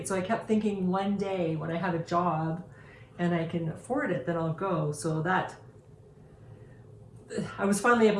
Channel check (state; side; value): identical; both; correlation 1.00